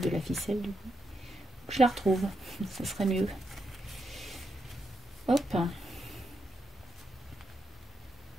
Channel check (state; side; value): normal; both; correlation 0.83